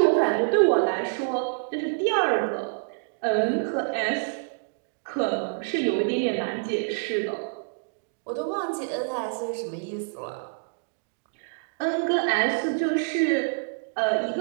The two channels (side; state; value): left; silent; digital silence